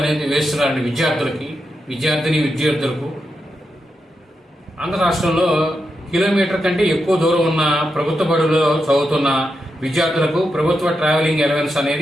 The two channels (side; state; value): both; normal; correlation 0.86